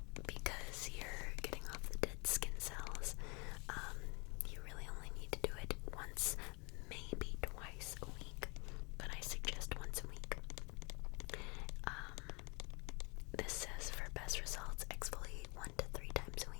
because you're getting off the dead skin cells, you really only need to do it once, maybe twice a week, but I suggest once a week. This says for best results, exfoliate 1 to 3 times a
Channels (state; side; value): quieter; right; 30.2 dB